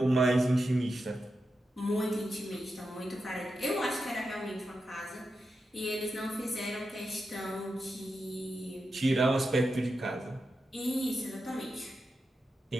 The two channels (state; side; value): normal; both; correlation 0.89